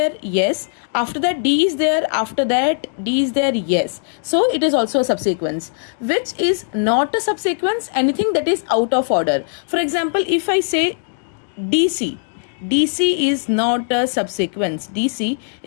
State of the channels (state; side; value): silent; right; digital silence